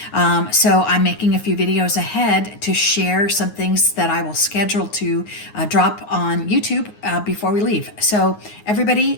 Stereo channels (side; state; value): right; late; 9.6 ms